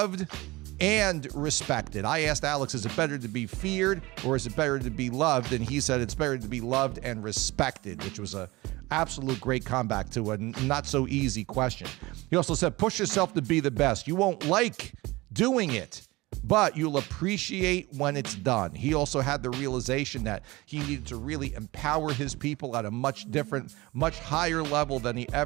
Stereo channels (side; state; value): left; quieter; 21.2 dB